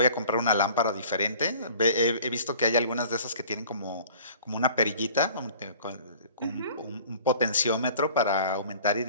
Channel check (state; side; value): inverted; both; correlation -0.48